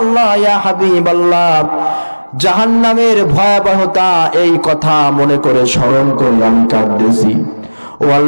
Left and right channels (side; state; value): both; inverted; correlation -1.00